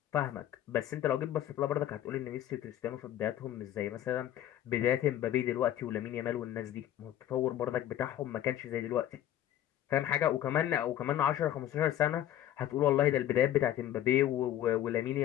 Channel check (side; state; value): right; quieter; 12.0 dB